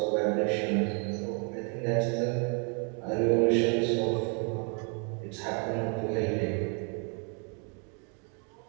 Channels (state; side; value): quieter; left; 38.1 dB